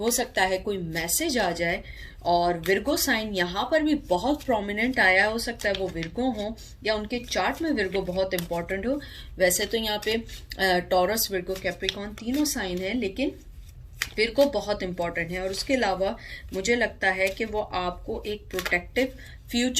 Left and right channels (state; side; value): identical; both; correlation 1.00